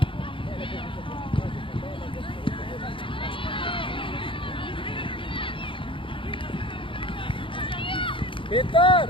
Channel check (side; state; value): right; late; 0.25 ms